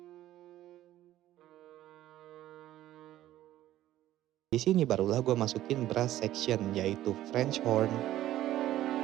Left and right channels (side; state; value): left; quieter; 13.8 dB